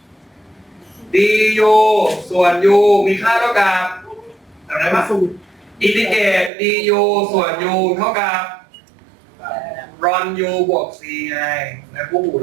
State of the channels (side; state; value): left; drops out; at 6.5 s